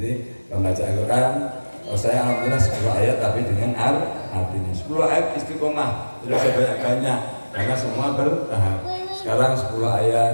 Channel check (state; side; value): inverted; both; correlation -1.00